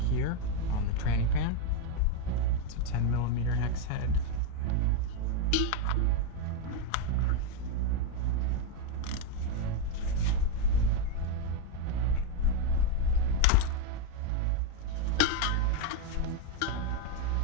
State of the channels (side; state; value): both; different; correlation 0.01